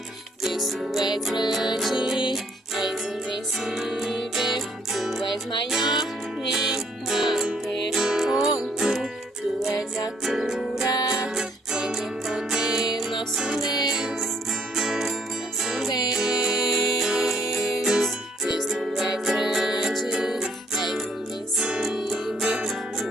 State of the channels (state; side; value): normal; both; correlation 0.65